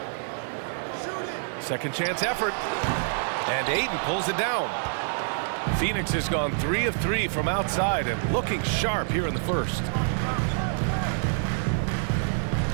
Second chance effort. And Ayton pulls it down. Phoenix has gone 3 of 3 from outside and looking sharp here in the first.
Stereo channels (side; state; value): left; silent; digital silence